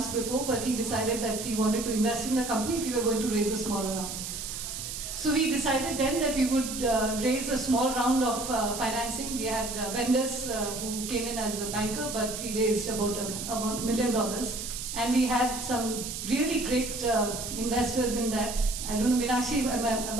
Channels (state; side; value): noise; right; hiss, 6 dB below the sound